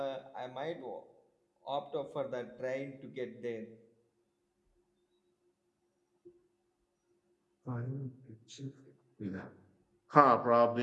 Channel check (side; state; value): both; identical; correlation 1.00